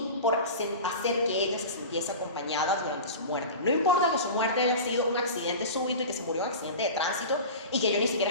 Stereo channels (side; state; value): both; inverted; correlation -0.31